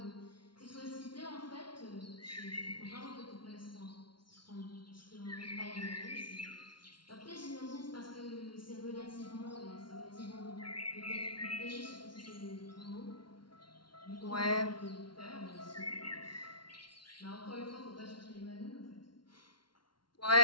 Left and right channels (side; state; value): right; late; 0.72 ms